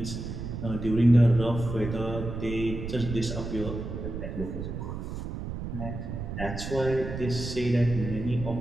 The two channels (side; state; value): right; noise; rumble, 6 dB below the sound